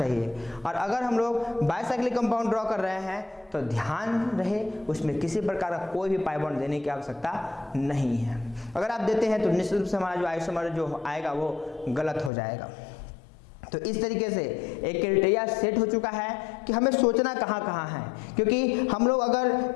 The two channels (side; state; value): right; drops out; at 12.3 s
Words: और अगर हम लोग बाइसाइक्लिक कंपाउंड ड्रॉ कर रहे हैं तो ध्यान रहे उसमें किसी प्रकार का कोई भी पाई बॉन्ड देने की आवश्यकता नहीं है। अगर आप देते हैं तो निश्चित रूप से हमारा जो आइसोमर जो आएगा वो गलत हो जाएगा। तो इस तरीके से एक क्राइटेरिया सेट हो चुका है कि हमें सोचना कहाँ कहाँ है, क्योंकि हम लोग अगर